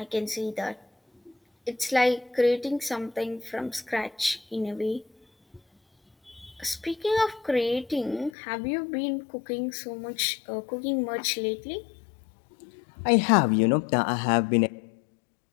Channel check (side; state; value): right; drops out; at 8.3 s